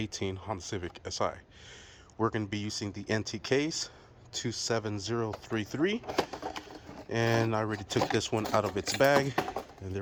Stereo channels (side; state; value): both; identical; correlation 1.00